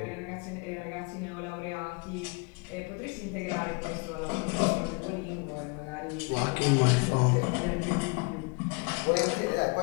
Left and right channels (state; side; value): quieter; right; 31.3 dB